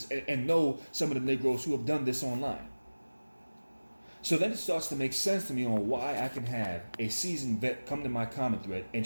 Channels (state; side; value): inverted; both; correlation -1.00